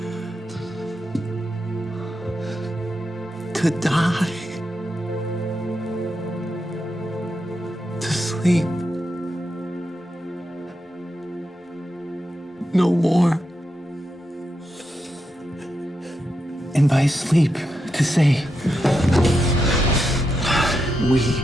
To die, to sleep, no more. And by sleep, to say, we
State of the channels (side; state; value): both; normal; correlation 0.85